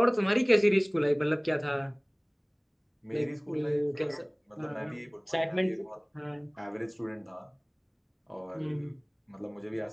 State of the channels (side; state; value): both; identical; correlation 1.00